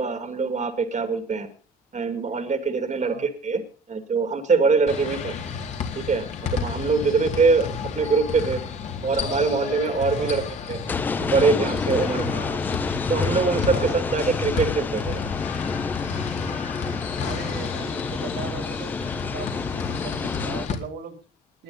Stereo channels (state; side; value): normal; both; correlation 0.48